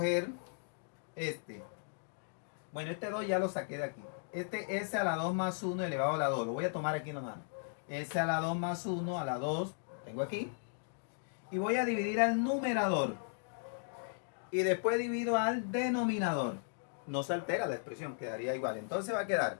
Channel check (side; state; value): right; silent; digital silence